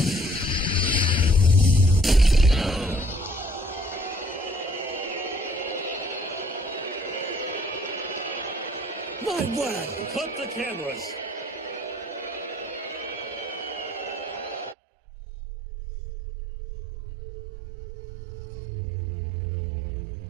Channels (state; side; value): drops out; left; at 14.8 s